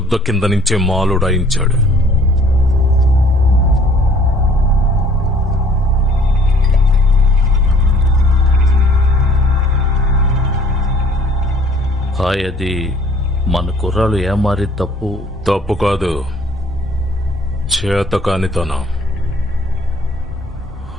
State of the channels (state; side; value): normal; both; correlation 0.56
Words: కింద నుంచే మాలుడాయించాడు. హాయ్, అది మన కుర్రాలు ఏమారి తప్పు కాదు, చేతకానితనం.